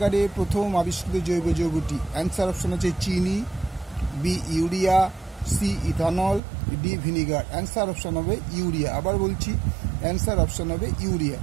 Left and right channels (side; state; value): left; drops out; at 6.4 s